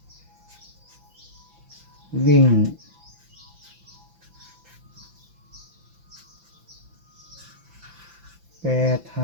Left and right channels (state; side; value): late; left; 5.9 ms